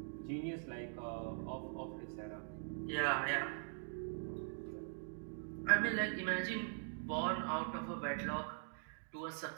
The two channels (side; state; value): left; silent; digital silence